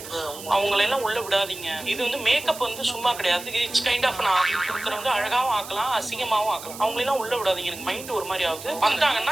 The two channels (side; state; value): right; noise; hiss, 13 dB below the sound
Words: அவங்களெல்லாம் உள்ள விடாதீங்க. இது வந்து மேக்கப் வந்து சும்மா கிடையாது. இட்ஸ் கைண்ட் ஆஃப் நான் கொடுக்குறவங்க அழகாவும் ஆக்கலாம், அசிங்கமாவும் ஆக்கலாம். அவங்களெல்லாம் உள்ள விடாதீங்க. எனக்கு மைண்ட் ஒரு மாதிரி ஆகுது.